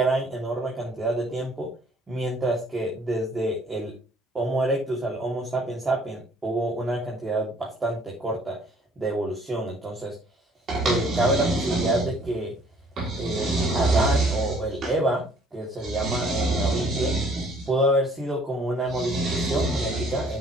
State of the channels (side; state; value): both; normal; correlation 0.59